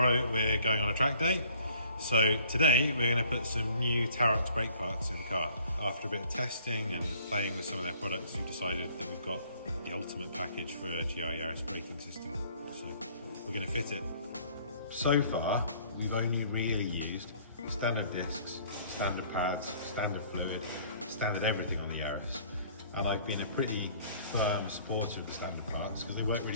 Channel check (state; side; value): inverted; both; correlation -0.57